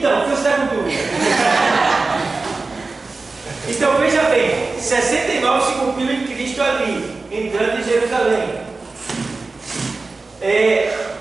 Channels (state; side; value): quieter; left; 3.7 dB